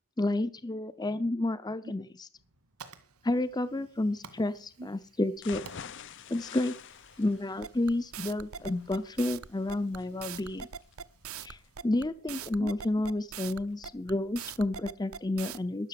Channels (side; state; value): both; normal; correlation 0.84